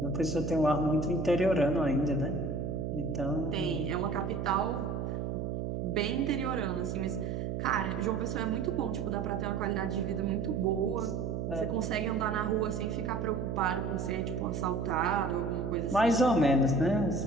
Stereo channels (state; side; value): noise; right; hum, 3 dB below the sound